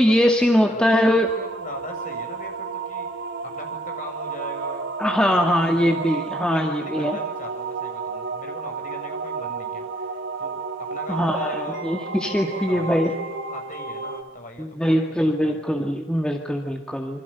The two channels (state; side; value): normal; both; correlation 0.69